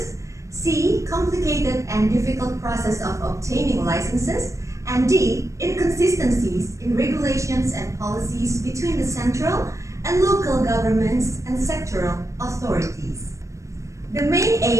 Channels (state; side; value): late; left; 0.15 ms